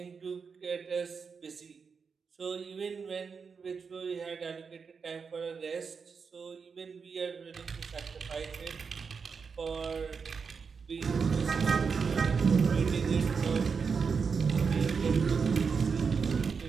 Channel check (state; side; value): quieter; left; 5.6 dB